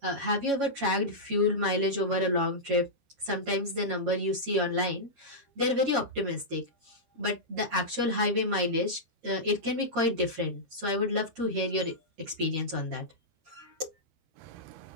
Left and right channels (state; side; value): late; left; 13 ms